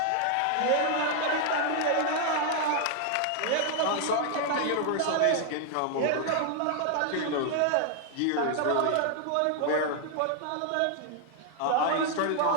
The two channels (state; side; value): different; both; correlation 0.00